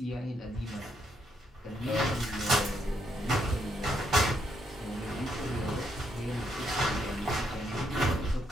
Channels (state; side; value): normal; both; correlation 0.76